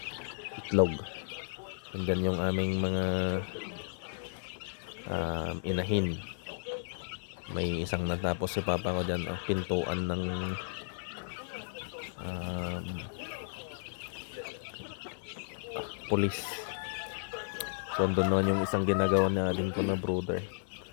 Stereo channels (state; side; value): silent; right; 55 dB below the other